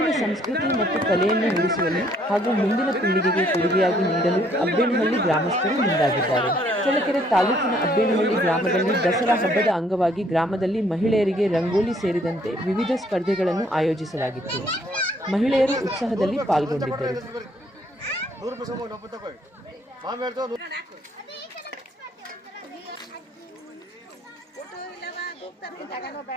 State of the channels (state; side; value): normal; both; correlation 0.65